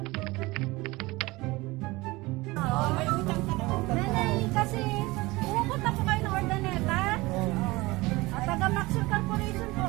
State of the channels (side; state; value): left; quieter; 21.7 dB